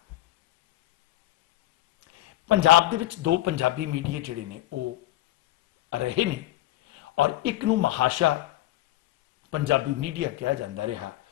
ਪੰਜਾਬ ਦੇ ਵਿੱਚ ਦੋ ਪੰਜਾਬੀ ਮੀਡੀਆ ਜਿਹੜੇ ਨੇ ਉਹ ਰਹੇ ਨੇ ਔਰ ਇੱਕ ਨੂੰ ਮਹਾਸ਼ਾ ਪੰਜਾਬੀ ਮੀਡੀਆ ਕਿਹਾ ਜਾਂਦਾ ਰਿਹਾ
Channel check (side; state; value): right; quieter; 15.8 dB